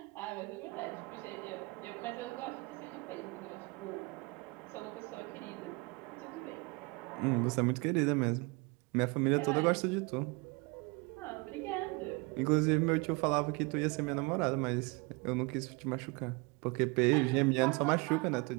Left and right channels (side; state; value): left; quieter; 27.8 dB